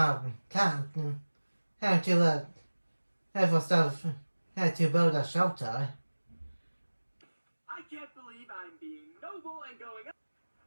camp and to look for stuff to build a shelter. I can't believe I'm being noble and going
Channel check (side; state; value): both; inverted; correlation -1.00